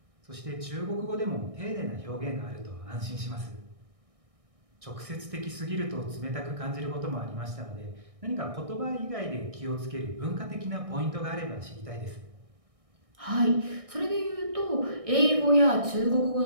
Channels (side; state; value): left; late; 1.6 ms